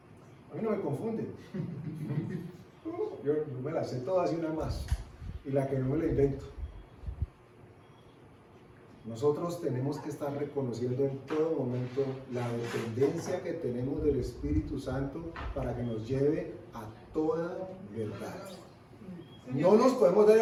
A mí no me confunden. Yo me la sé todas y una más. Y la que no me la invento. Nosotros tenemos que estar reconociendo en todo momento la dependencia que tenemos del Espíritu Santo para que nos lleve a toda verdad. No nos podemos dar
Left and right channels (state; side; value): identical; both; correlation 1.00